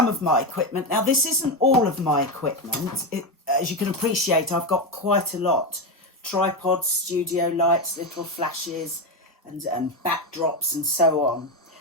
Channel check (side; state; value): both; normal; correlation 0.12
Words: of my equipment, now this isn't all of my equipment. As you can appreciate, I've got quite a lot. Tripods, studio lights, little flashes and backdrops and so on.